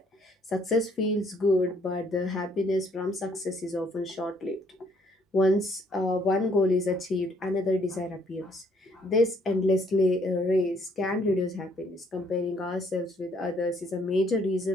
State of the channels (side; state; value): both; normal; correlation 0.66